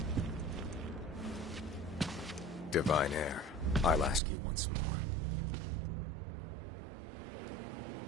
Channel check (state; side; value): drops out; left; at 4.2 s